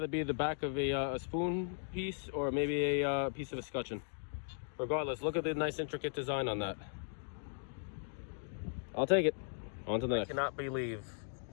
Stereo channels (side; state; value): right; silent; digital silence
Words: be the back of a spoon piece or maybe a piece of a scutcheon. Regardless, look at the nice intricate design on that. I'll take it. On to the next. I cannot believe